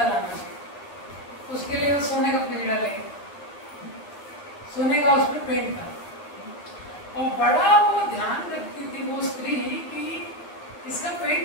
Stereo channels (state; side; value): late; right; 10 ms